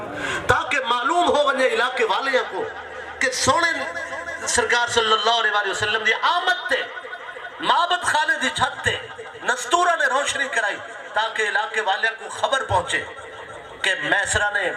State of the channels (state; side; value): identical; both; correlation 1.00